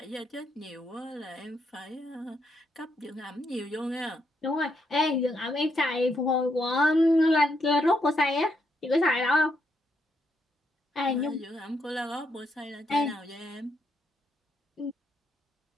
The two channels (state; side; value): normal; both; correlation 0.78